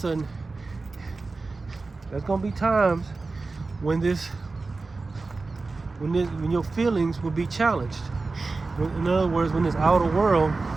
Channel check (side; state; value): left; quieter; 3.8 dB